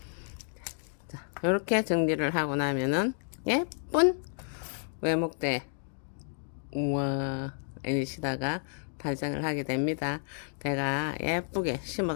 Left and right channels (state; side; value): silent; right; digital silence